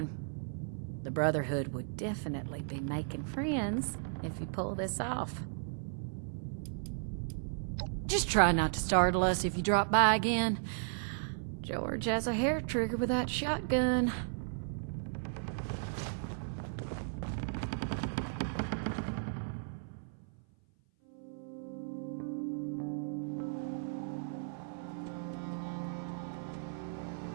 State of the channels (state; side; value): silent; left; 54 dB below the other